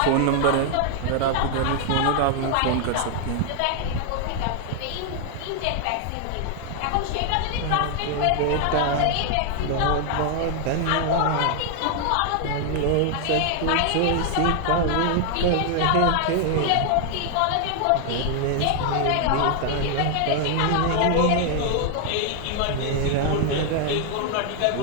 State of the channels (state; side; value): different; both; correlation 0.00